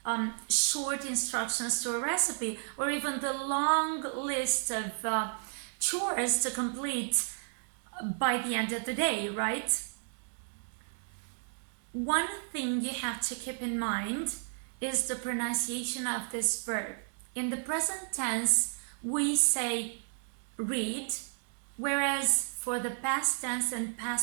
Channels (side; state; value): left; silent; digital silence